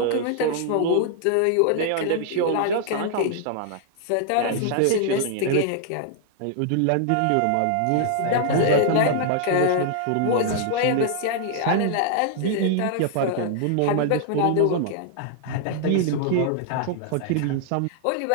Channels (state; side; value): different; both; correlation -0.01